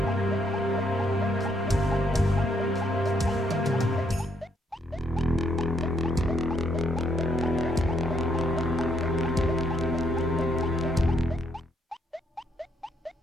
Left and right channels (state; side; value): normal; both; correlation 0.74